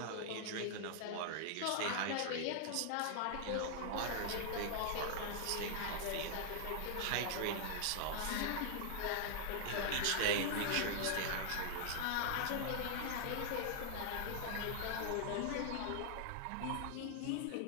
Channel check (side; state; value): both; different; correlation 0.00